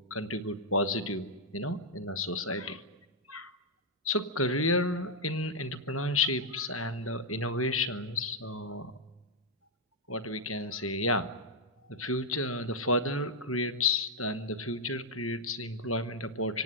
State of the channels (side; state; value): both; normal; correlation -0.03